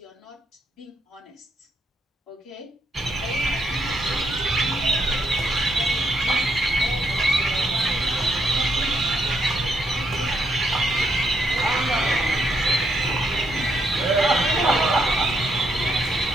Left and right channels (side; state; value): both; normal; correlation 0.74